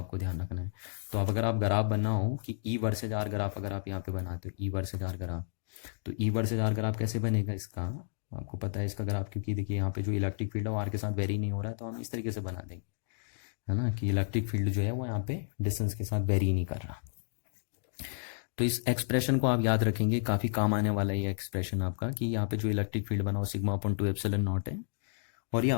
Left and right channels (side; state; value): right; silent; digital silence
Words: ध्यान रखना है। तो अब अगर आप ग्राफ बनना हो कि ई वर्सेज आर ग्राफ अगर आप यहाँ पे बनाते हो, ई वर्सेज आर ग्राफ, तो ई वर्सेज आर ग्राफ कैसे बनेगा इसका, आपको पता है इसका ग्राफ, क्योंकि देखिए यहाँ पे जो इलेक्ट्रिक फील्ड है वो आर के साथ वेरी नहीं हो रहा है, तो हम इस तरीके से बना देंगे, है ना, कि इलेक्ट्रिक फील्ड जो है वो यहाँ पे डिस्टेंस के साथ वेरी नहीं कर रहा। तो इस एक्सप्रेशन को आप याद रखेंगे, काफ़ी काम आने वाला है ये एक्सप्रेशन आपका, कि यहाँ पे जो इलेक्ट्रिक फील्ड बना वो सिग्मा अपॉन 2 एप्सिलन नॉट है, और ये